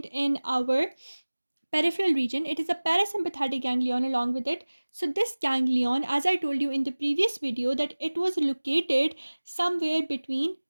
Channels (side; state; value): both; inverted; correlation -1.00